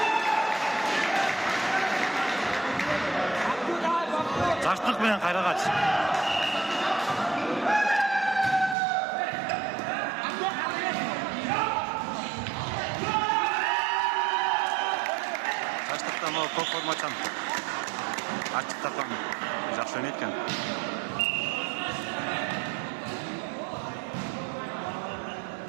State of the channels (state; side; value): drops out; left; at 8.8 s